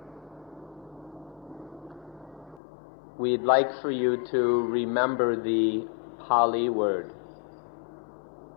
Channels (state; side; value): drops out; right; at 2.6 s